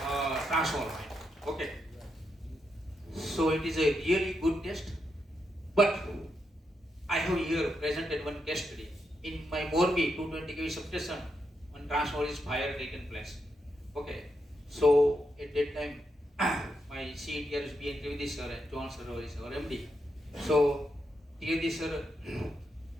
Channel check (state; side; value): normal; both; correlation 0.83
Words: transformer. Okay. So it is a really good test. But I have here presented one case study. In my Morbi 220 kV substation, one transformer is fire taken place. Okay. So at that time, my CETR is being Trivedi sir and John sir is our MD. So Trivedi sir